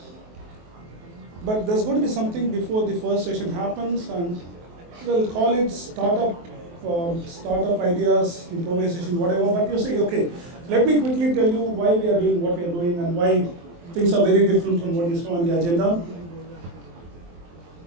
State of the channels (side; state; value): left; late; 23 ms